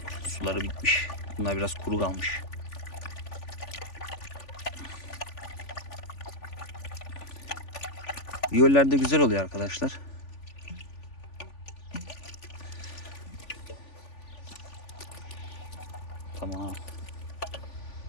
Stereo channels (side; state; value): right; late; 3.5 ms